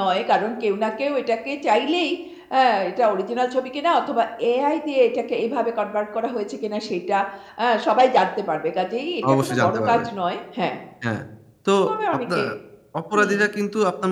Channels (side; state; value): both; identical; correlation 1.00